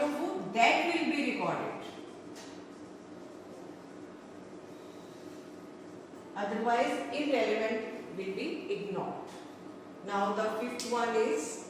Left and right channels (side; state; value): both; identical; correlation 1.00